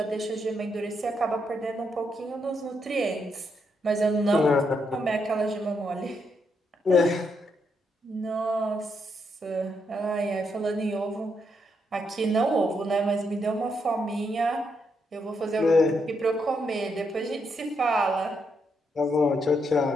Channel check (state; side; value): normal; both; correlation 0.79